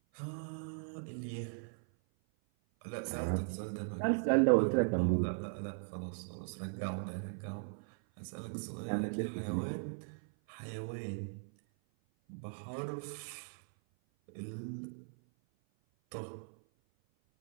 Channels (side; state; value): left; silent; 52 dB below the other